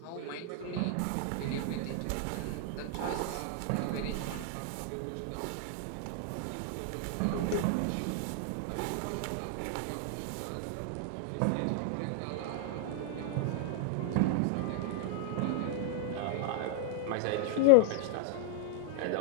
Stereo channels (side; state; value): both; different; correlation 0.00